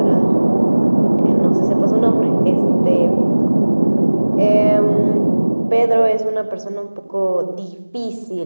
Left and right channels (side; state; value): both; inverted; correlation -1.00